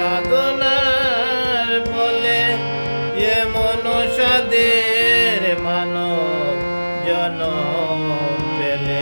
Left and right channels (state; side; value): inverted; both; correlation -1.00